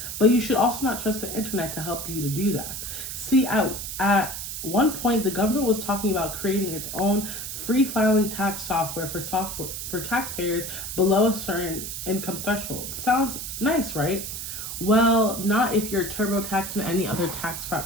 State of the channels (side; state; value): right; noise; hiss, 6 dB below the sound